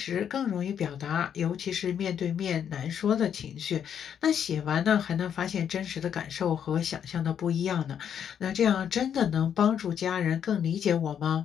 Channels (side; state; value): right; quieter; 8.6 dB